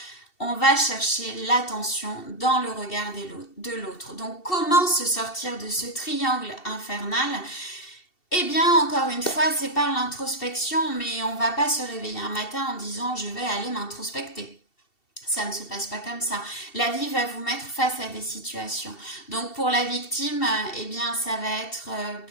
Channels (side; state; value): right; late; 2.7 ms